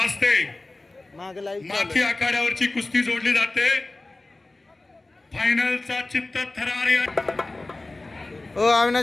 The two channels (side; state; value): right; quieter; 3.0 dB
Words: माथी आखाड्यावरची कुस्ती जोडली जाते. फायनलचा चित्त थरार या